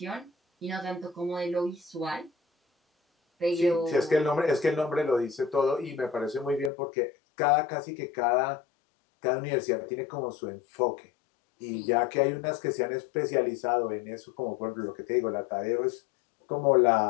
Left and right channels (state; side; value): drops out; right; at 6.7 s